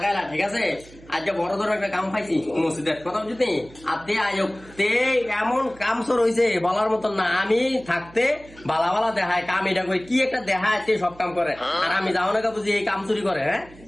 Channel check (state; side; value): noise; right; hum, 22 dB below the sound